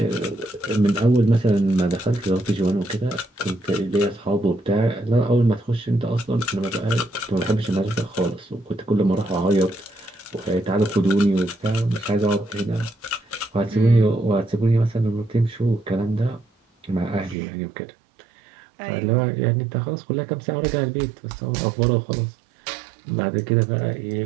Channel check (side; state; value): left; drops out; at 17.4 s